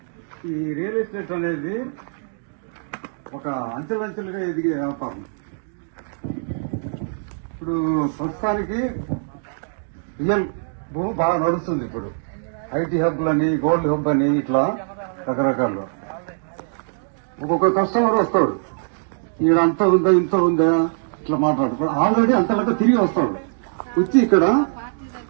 ఈ రియల్ ఎస్టేట్ అనేది ఒక అంచెలంచెలుగా ఎదిగే వ్యాపారం. ఇప్పుడు ప్రస్తుతానికి రియల్ భూమి బాగా నడుస్తుంది. ఇప్పుడు ఐటీ హబ్బులని, గోల్డ్ హబ్ అని ఇట్లా రకరకాలు. ఒక్కొక్క కస్టమర్ వస్తాడు, ఈడ అంత ఉందా ఇంత ఉందా ఇట్లా మాట్లాడు. ఆల్రెడీ అంతలాగా తిరిగి వస్తాడు, వచ్చి ఇక్కడ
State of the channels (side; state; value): left; silent; digital silence